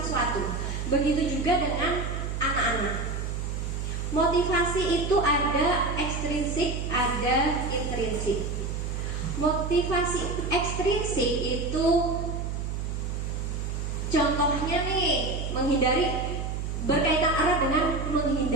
sesuatu. Begitu juga dengan anak-anak. Motivasi itu ada ekstrinsik, ada intrinsik. Motivasi ekstrinsik itu contohnya nih, berkaitan erat dengan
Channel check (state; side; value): noise; right; hum, 3 dB below the sound